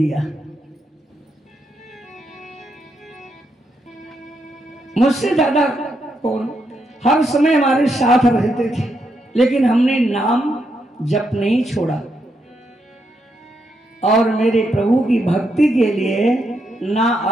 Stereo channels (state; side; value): normal; both; correlation 0.80